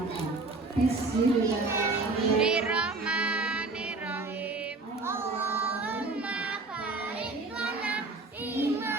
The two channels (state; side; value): quieter; left; 3.5 dB